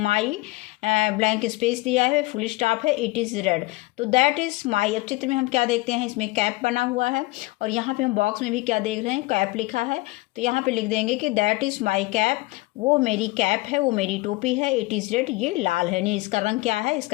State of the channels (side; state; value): right; quieter; 21.7 dB